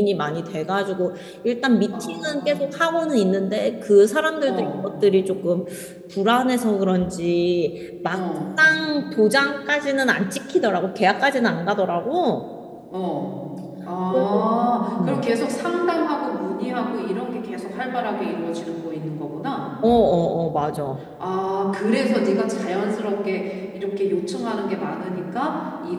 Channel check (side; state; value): both; identical; correlation 1.00